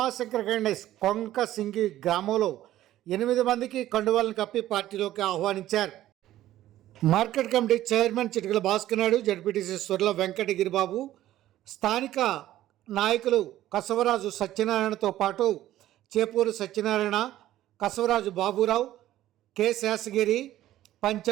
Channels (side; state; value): left; quieter; 13.8 dB